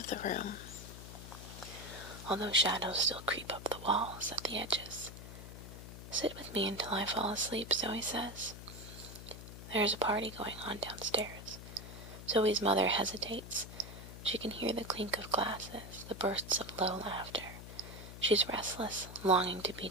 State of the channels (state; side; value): noise; left; hum, 12 dB below the sound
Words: the room, although shadows still creep up the walls at the edges. "Sit with me until I fall asleep," Zoe says. There is a party going on downstairs. Zoe's mother hesitates. She can hear the clink of glasses, the bursts of low laughter. She's restless, longing to be